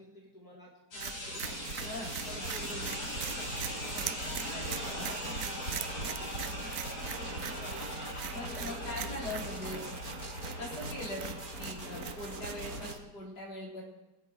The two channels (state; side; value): late; right; 4.0 ms